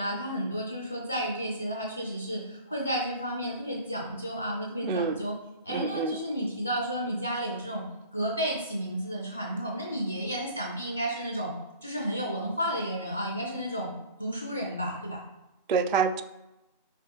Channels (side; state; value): both; inverted; correlation -0.42